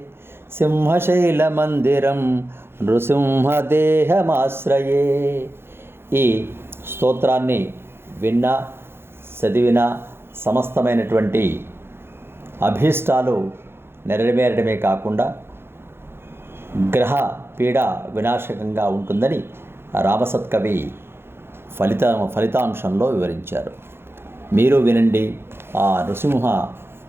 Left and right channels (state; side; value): late; left; 0.11 ms